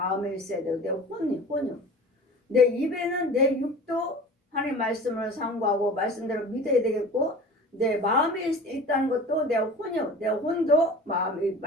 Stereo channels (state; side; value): normal; both; correlation 0.39